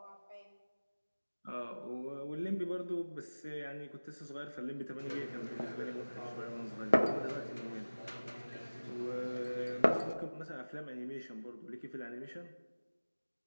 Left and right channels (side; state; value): both; inverted; correlation -1.00